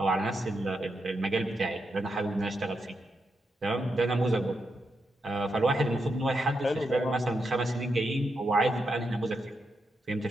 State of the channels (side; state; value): both; normal; correlation 0.84